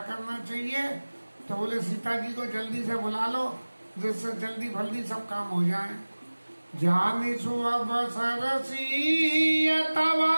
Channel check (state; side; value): inverted; both; correlation -1.00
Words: करना चाहिए? तो बोले सीता जी को जल्दी से बुला लो, जिससे जल्दी फल्दी सब काम हो जाए। जानी सुअवसरसीयतवा